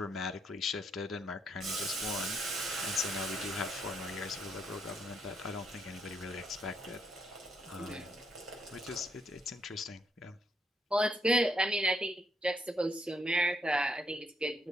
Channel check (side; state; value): both; normal; correlation 0.75